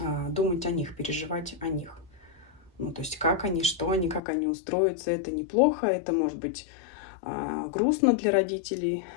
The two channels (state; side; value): drops out; right; at 4.2 s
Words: думать о них, переживать о них. Ну, то есть как они, что они, как они устроятся, это неплохо, это может быть грустно для родителей.